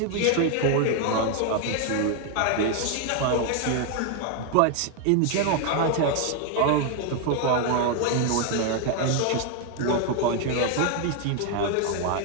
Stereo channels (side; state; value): both; different; correlation 0.00